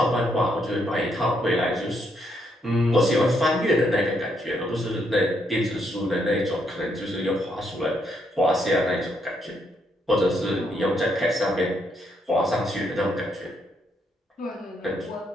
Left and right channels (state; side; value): normal; both; correlation 0.75